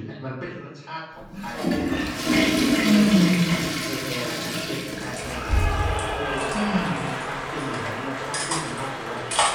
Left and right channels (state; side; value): identical; both; correlation 1.00